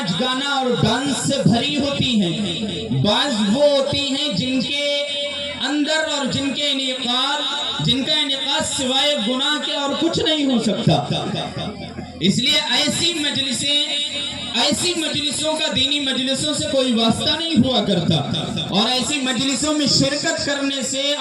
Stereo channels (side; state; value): both; identical; correlation 1.00